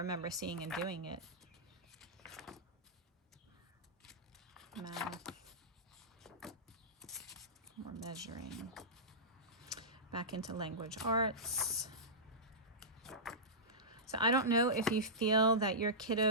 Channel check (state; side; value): normal; both; correlation -0.15